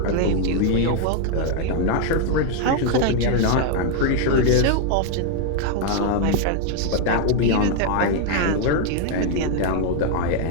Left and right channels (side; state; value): both; different; correlation 0.00